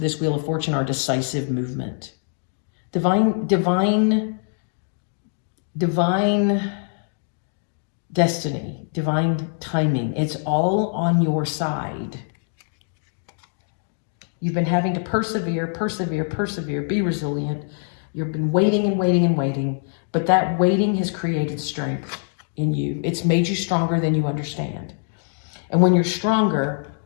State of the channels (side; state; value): right; silent; 63 dB below the other